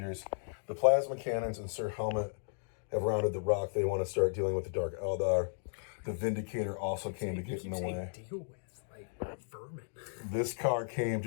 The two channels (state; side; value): silent; right; digital silence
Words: The Plasma Cannons and Sir Helmut have rounded the rock. They want to start dealing with the Dark Eldar. The Vindicator also came to get in the way. Deal with, like, vermin. This car came